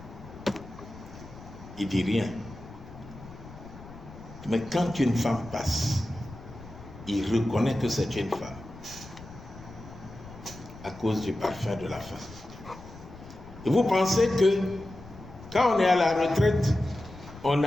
il dit rien. Mais quand une femme passe, il reconnaît que c'est une femme à cause du parfum de la femme. Et vous pensez que quand on est à la retraite, on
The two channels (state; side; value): noise; left; rumble, 17 dB below the sound